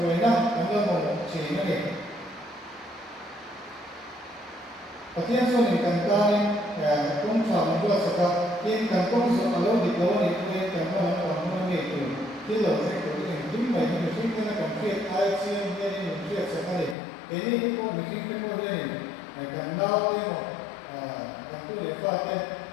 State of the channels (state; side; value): drops out; right; at 16.9 s